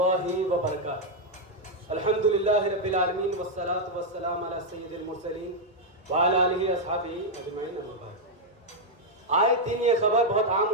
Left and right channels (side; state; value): both; normal; correlation -0.01